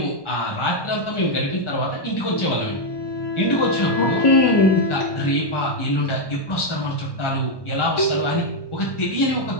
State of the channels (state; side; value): late; right; 1.2 ms